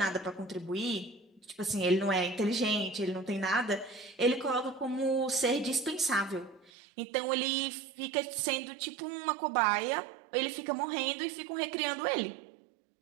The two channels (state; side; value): drops out; left; at 6.7 s